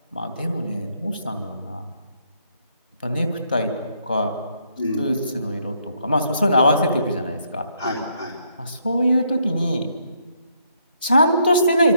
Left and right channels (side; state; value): both; inverted; correlation -0.72